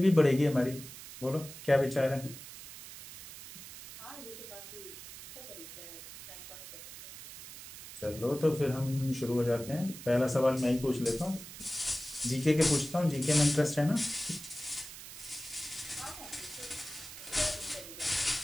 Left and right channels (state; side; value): noise; right; hiss, 13 dB below the sound